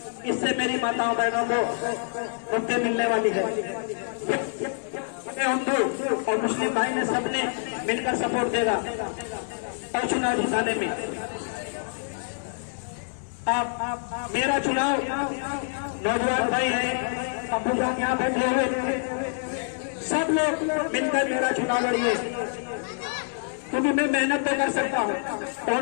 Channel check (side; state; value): right; silent; digital silence